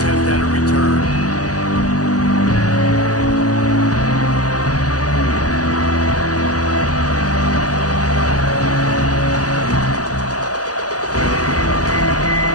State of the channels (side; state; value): right; late; 0.67 ms